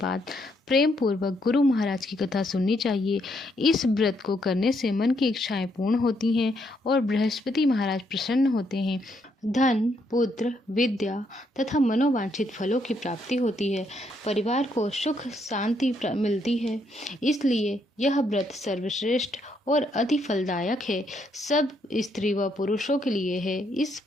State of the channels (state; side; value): normal; both; correlation 0.74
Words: प्रेम पूर्वक गुरु महाराज की कथा सुननी चाहिए। इस व्रत को करने से मन की इच्छाएं पूर्ण होती हैं और बृहस्पति महाराज प्रसन्न होते हैं। धन, पुत्र, विद्या तथा मनोवांछित फलों की प्राप्ति होती है। परिवार को सुख शांति मिलती है। इसलिए यह व्रत सर्वश्रेष्ठ और अति फलदायक है। सब स्त्री व पुरुषों के लिए है। इस